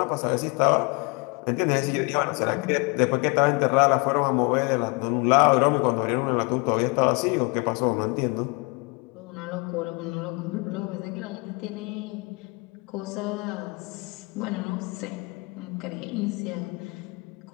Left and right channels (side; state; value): right; quieter; 29.7 dB